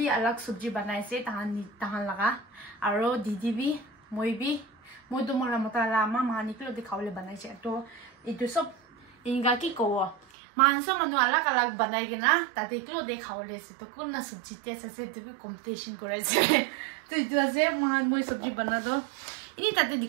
अलग सब्जी बनाए से तहान लगा और दीदी भी मैं तो मोला मोतला आमा महान निकलो दिखाओ ले बनाए से तो इतो सब इनका की को मानसो मनु अलग अलग बनाएगी ना ताते किलो देखाओ ले से तो कौन ना सब्जी टेस्ट से तो भी कंपटीशन करे से तो इतो से महान मोई सब्जी बना दो इन्हीं ताते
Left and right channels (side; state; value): left; drops out; at 10.2 s